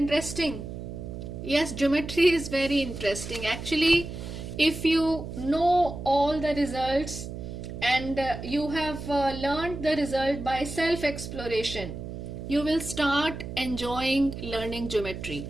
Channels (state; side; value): noise; right; hum, 8 dB below the sound